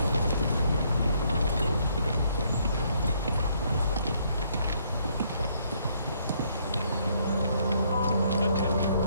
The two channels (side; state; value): both; inverted; correlation -0.69